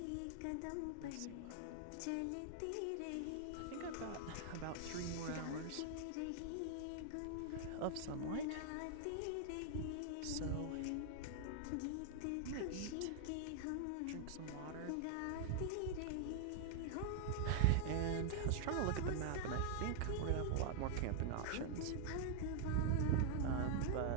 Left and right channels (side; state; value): both; different; correlation 0.00